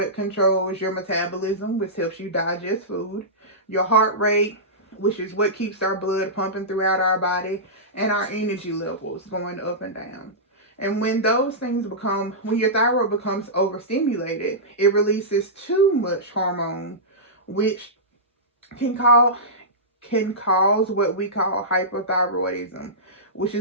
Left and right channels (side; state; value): both; normal; correlation -0.16